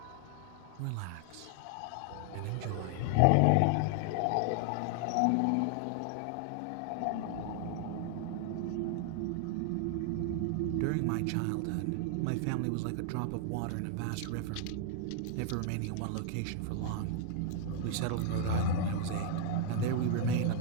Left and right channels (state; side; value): different; both; correlation 0.00